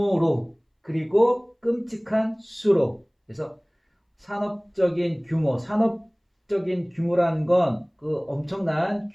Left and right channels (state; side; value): identical; both; correlation 1.00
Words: 그리고 끔찍한 수로. 그래서 산업적인 규모라는 건 그 엄청난